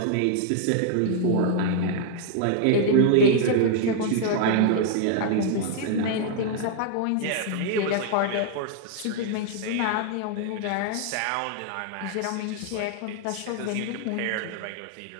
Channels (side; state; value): both; different; correlation 0.00